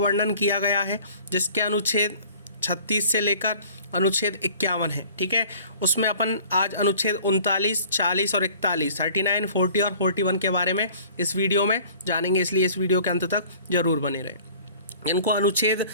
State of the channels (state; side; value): inverted; both; correlation -0.50